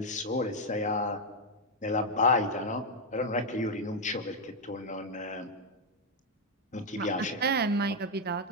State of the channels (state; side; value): normal; both; correlation 0.01